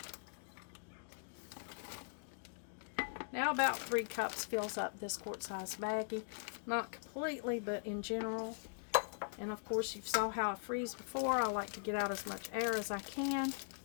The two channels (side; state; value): right; silent; digital silence